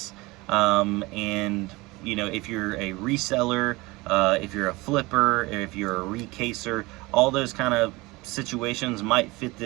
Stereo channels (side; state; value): left; quieter; 22.5 dB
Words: And you know, if you're a reseller, if you're a flipper, if you're a recaser, all those kind of situations might fit